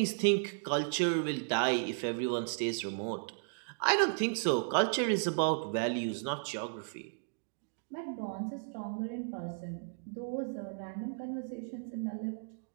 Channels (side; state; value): left; silent; digital silence